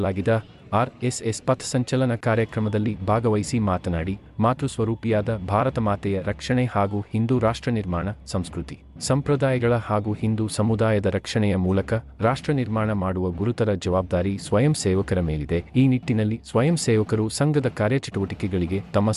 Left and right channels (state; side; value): identical; both; correlation 1.00